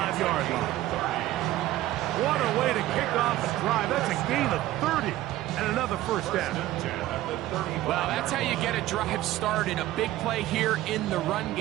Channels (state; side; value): quieter; left; 15.2 dB